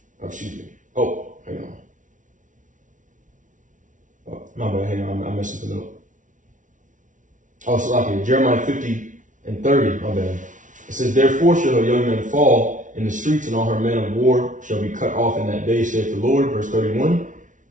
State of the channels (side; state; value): left; late; 0.37 ms